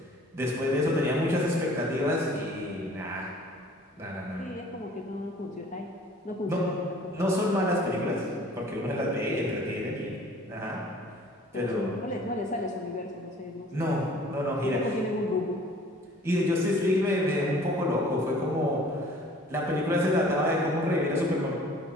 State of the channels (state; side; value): normal; both; correlation 0.51